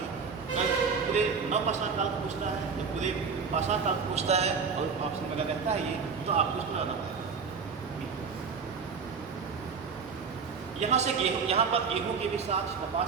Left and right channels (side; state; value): left; quieter; 5.5 dB